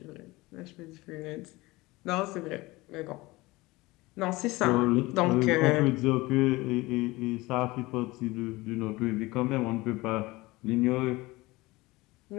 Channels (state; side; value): quieter; right; 21.2 dB